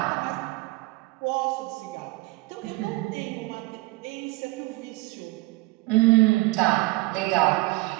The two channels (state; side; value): quieter; left; 21.9 dB